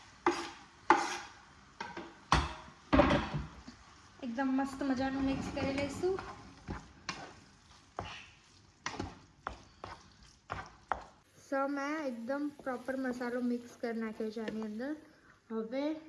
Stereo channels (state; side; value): identical; both; correlation 1.00